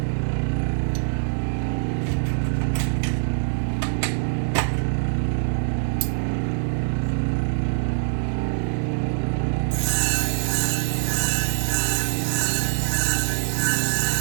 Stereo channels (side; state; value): left; silent; digital silence